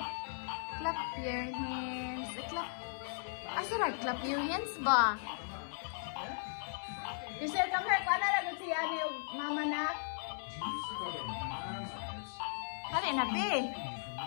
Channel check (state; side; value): silent; right; digital silence